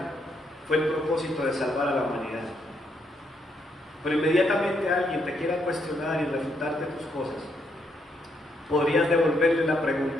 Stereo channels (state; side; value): normal; both; correlation 0.76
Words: fue el propósito de salvar a la humanidad. Pero inmediatamente alguien te quiera cuestionar y refutarte tus cosas, podrías devolverle la